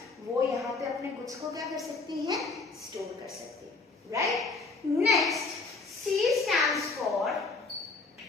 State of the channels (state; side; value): quieter; right; 3.9 dB